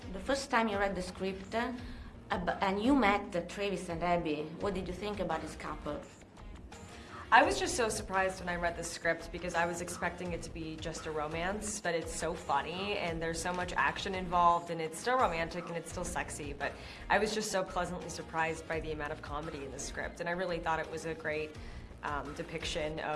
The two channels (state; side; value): identical; both; correlation 1.00